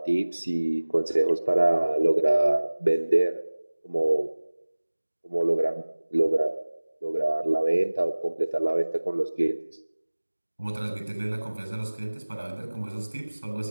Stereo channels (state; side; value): inverted; both; correlation -1.00